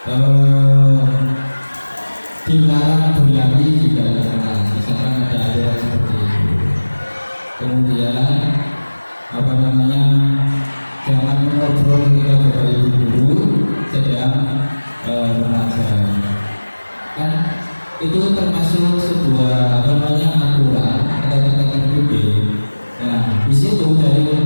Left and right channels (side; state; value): both; inverted; correlation -1.00